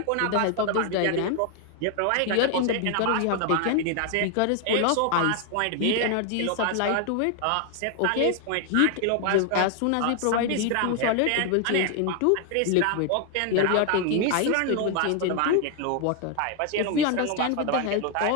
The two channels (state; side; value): different; both; correlation 0.00